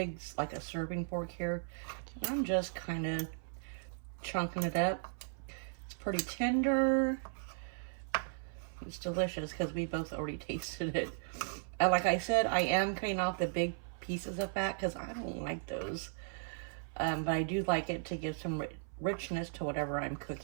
like a serving fork here. I'm just kind of chunking it up. It's pretty tender. It's delicious because we both already tasted it. Like I said, I am cutting off the big pieces of fat because I don't like those. But I do like it to give some richness to whatever I'm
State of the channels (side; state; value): left; silent; 53 dB below the other